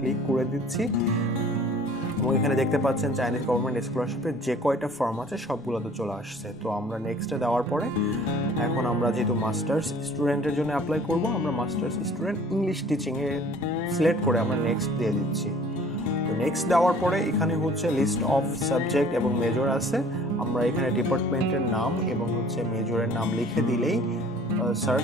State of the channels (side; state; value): both; normal; correlation 0.51